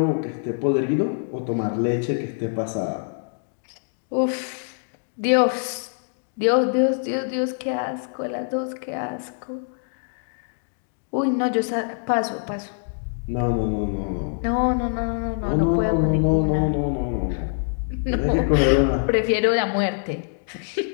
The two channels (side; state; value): right; silent; digital silence